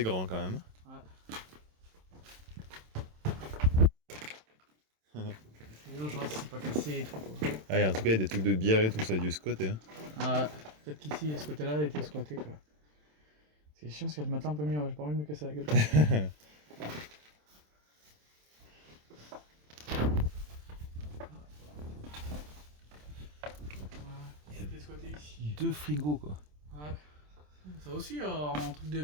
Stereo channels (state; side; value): late; left; 27 ms